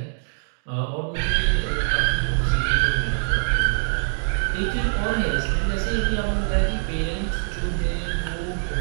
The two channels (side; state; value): left; silent; digital silence